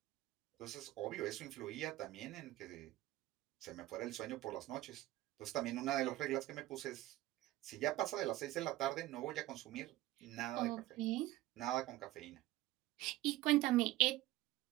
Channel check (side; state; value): left; quieter; 16.6 dB